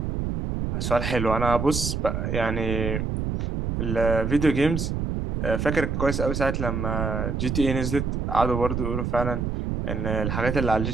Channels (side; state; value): right; noise; rumble, 2 dB below the sound